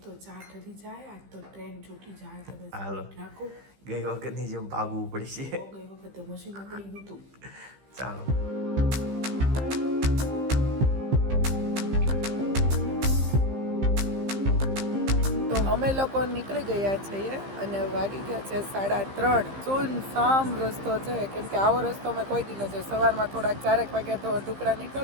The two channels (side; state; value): left; late; 15 ms